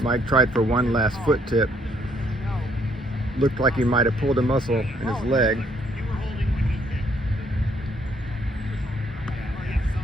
Mike tried for one last foot tip. Looked like he might have pulled a muscle in his leg.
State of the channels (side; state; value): both; normal; correlation 0.68